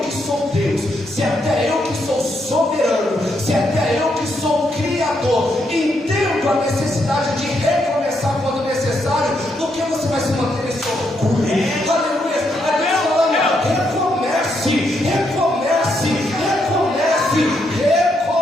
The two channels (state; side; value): normal; both; correlation 0.78